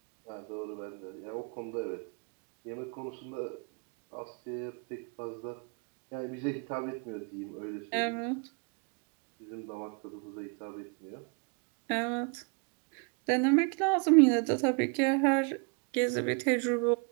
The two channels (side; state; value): left; quieter; 35.4 dB